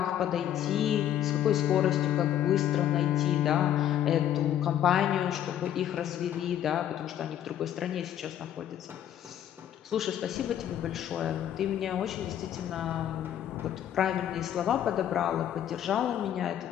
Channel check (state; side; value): quieter; right; 10.7 dB